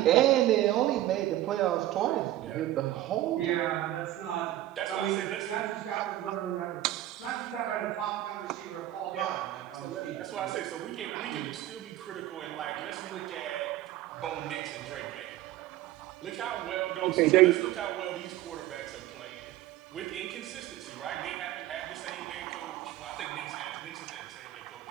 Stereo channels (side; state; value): left; quieter; 14.2 dB